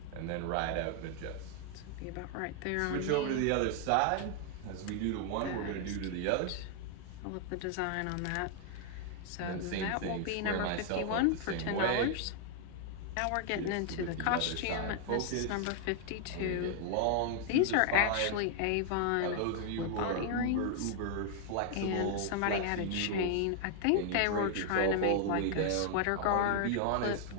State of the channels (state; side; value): different; both; correlation 0.00